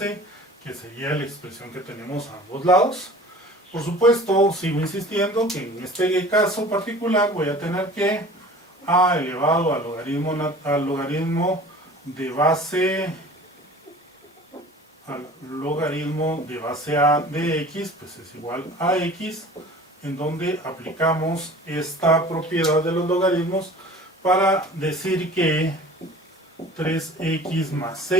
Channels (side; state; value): both; normal; correlation 0.44